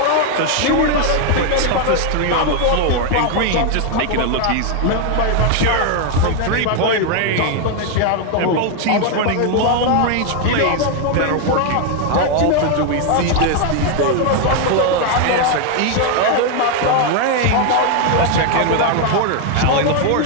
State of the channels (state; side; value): different; both; correlation 0.01